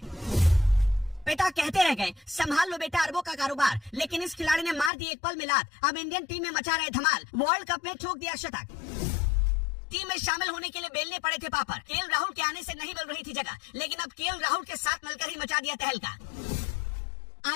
पिता कहते रह गए संभाल लो बेटा अरबों का कारोबार, लेकिन इस खिलाड़ी ने मार दी एक पल में लात। अब इंडियन टीम में मचा रहे धमाल, वर्ल्ड कप में ठोक दिया शतक। टीम में शामिल होने के लिए बेलने पड़े थे पापड़। केएल राहुल के आने से नहीं मिल रही थी जगह, लेकिन अब केएल राहुल के साथ मिलकर ही मचा दिया तहलका।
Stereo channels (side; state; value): right; drops out; at 4.9 s